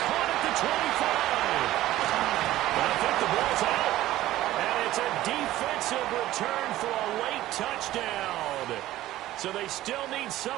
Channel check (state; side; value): quieter; left; 15.1 dB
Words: at the 25. And I think the ball's out. And it's a defensive return for a late touchdown. So they still need